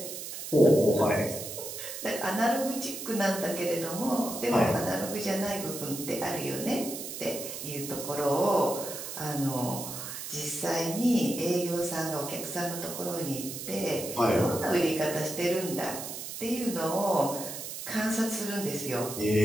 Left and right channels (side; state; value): right; noise; hiss, 8 dB below the sound